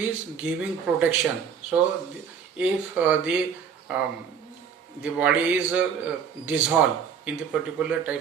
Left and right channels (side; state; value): left; quieter; 7.2 dB